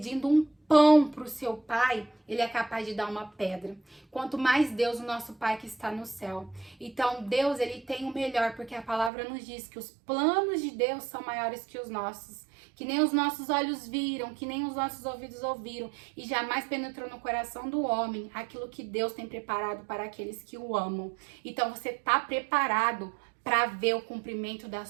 um pão para o seu pai, ele é capaz de dar uma pedra. Quanto mais Deus, o nosso Pai que está no céu. Então, Deus, ele tem o melhor, porque a palavra nos diz que os planos de Deus são maiores que os nossos. Que nem os nossos olhos viram, que nem os nossos ouvidos ouviram, e jamais penetrou no coração do homem aquilo que Deus tem preparado para aqueles que o amam. Então, você está preparado para ver o cumprimento das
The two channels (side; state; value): left; drops out; at 9.1 s